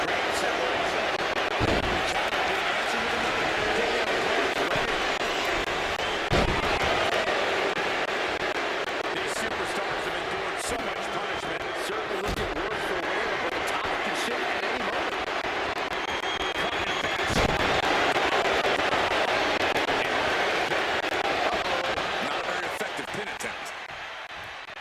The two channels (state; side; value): identical; both; correlation 1.00